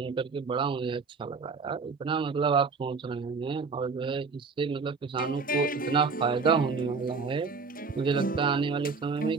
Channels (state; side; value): quieter; left; 4.8 dB